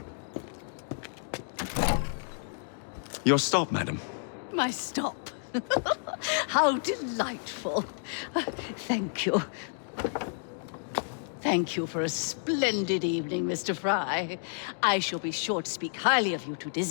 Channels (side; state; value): right; silent; digital silence